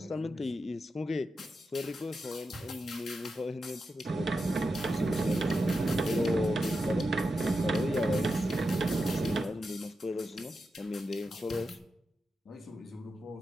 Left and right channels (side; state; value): both; normal; correlation 0.88